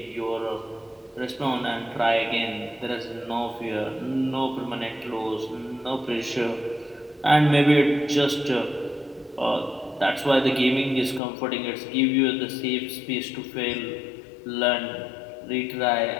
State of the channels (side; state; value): right; drops out; at 11.2 s